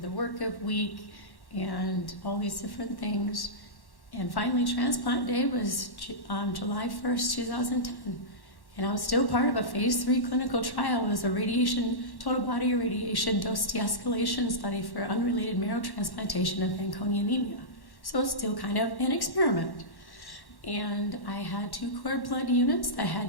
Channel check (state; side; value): late; right; 1.1 ms